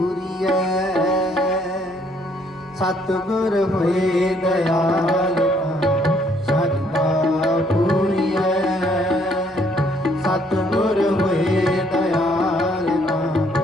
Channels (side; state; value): both; normal; correlation 0.66